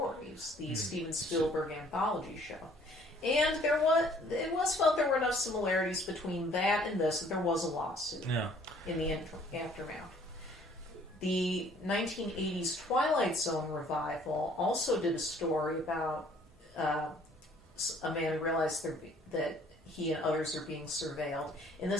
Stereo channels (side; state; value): both; normal; correlation 0.58